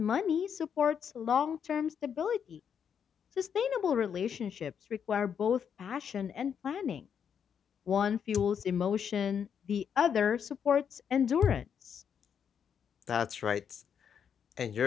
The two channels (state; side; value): quieter; right; 7.7 dB